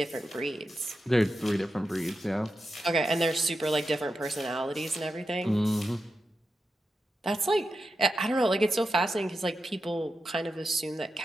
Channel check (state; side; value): normal; both; correlation 0.89